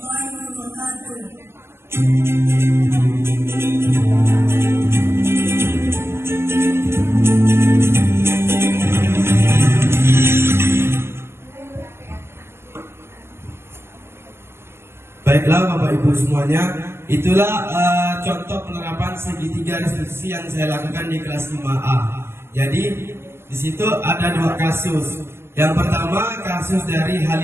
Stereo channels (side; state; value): left; late; 0.12 ms